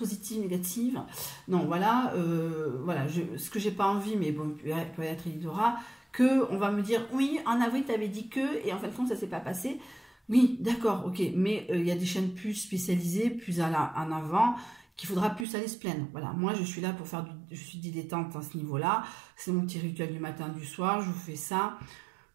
négatives. Non, voilà, voilà ce que j'ai pas envie, mais bon, peut-être il y aura, que on va me dire, oui, en avril, tu avais dit que, et en fin de compte, ça s'est pas passé. Oui, d'accord, ok, mais il y a des chaînes plus spécialisées, plus en avant, qu'il faudra plus aller se plaindre. Voilà, moi je suis là pour faire je suis dilettante à ce niveau-là. C'est mon petit rituel du matin, du soir, je vous fais ça.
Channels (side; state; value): left; drops out; at 15.5 s